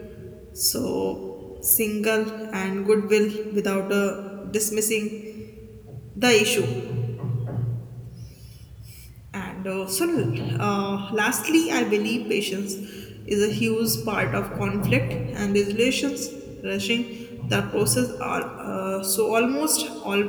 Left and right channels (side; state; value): both; identical; correlation 1.00